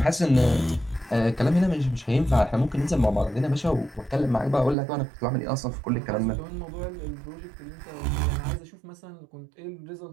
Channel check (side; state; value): left; drops out; at 4.8 s